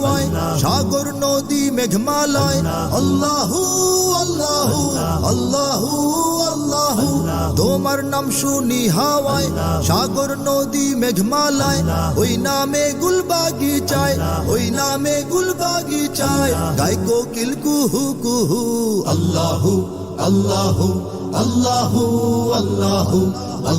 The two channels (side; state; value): both; identical; correlation 1.00